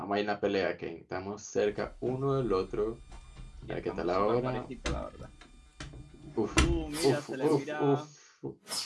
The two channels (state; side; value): identical; both; correlation 1.00